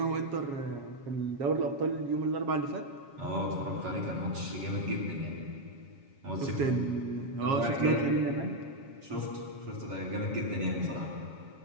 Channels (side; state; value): left; late; 7.3 ms